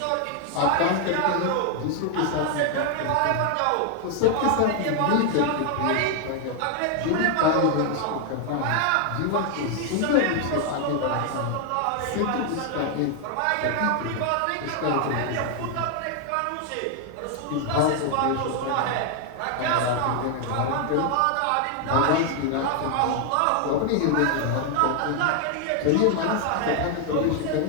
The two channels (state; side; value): different; both; correlation 0.00